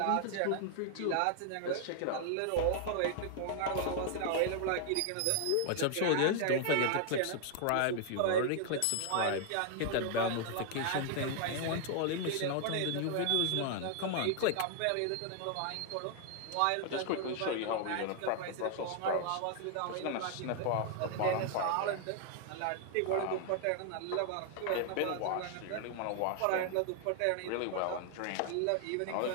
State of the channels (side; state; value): both; different; correlation 0.00